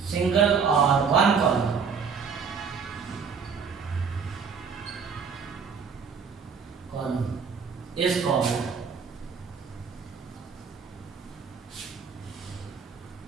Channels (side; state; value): left; quieter; 5.9 dB